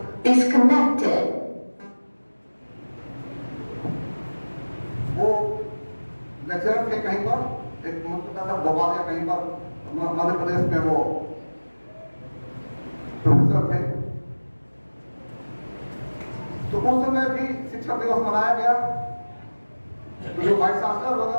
Disconnected. वो लेक्चरर थे कहीं पर, एक मतलब भोपाल या कहीं पर मध्य प्रदेश में वो प्रोफेसर थे। तो उस समय भी शिक्षक दिवस मनाया गया। तो जो वाइस चांसलर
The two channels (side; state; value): both; inverted; correlation -1.00